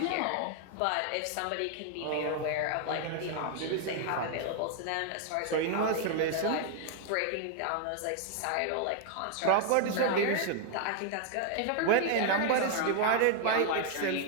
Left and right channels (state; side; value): different; both; correlation 0.00